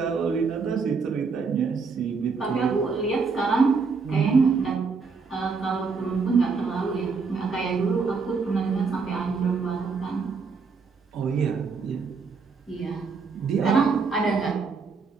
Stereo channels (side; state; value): left; quieter; 4.9 dB